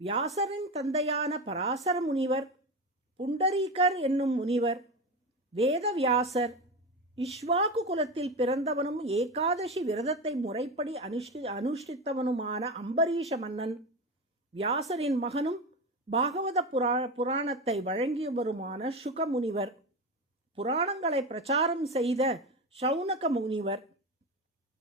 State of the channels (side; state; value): both; normal; correlation 0.21